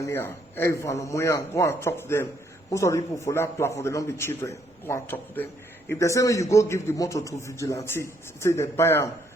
there. Every van on where go and talk to them. Most of the people for that platform they don't be children. Go and talk to them. If they say when you go give the motor to vigilante, say they buy them,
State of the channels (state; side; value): normal; both; correlation 0.70